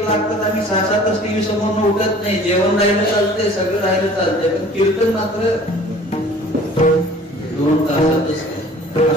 लागतात, आम्ही 6-7 तास टीव्ही समोर उठत नाही. जेवण राहिलं चालतंय, सगळं राहिलं चालतंय, पण कीर्तन मात्र 2 तासातच.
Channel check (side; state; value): both; normal; correlation 0.49